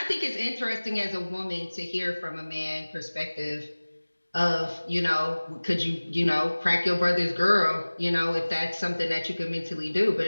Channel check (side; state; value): both; inverted; correlation -1.00